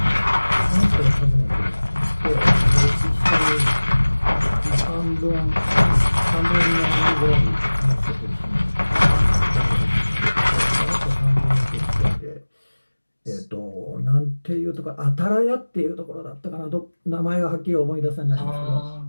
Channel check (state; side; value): inverted; both; correlation -1.00